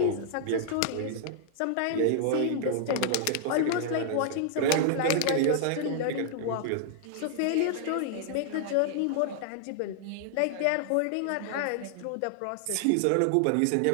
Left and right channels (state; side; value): different; both; correlation -0.01